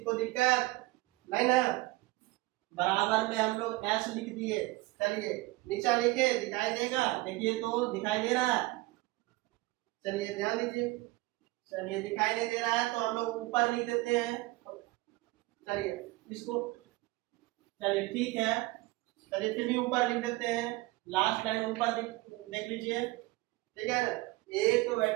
को दिक्कत नहीं ना? बराबर में हम लोग s लिख दिए। चलिए नीचा लिखे, दिखाई देगा? देखिए तो दिखाई दे रहा है? चलिए ध्यान दीजिए, चलिए दिखाई नहीं दे रहा है तो हम लोग ऊपर लिख देते हैं। चलिए इसको, चलिए ठीक है, चलिए फिर भी ऊपर लिख देते हैं, लास्ट लाइन ऊपर देख लीजिए, ठीक है ना? 1/,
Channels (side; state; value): left; quieter; 21.0 dB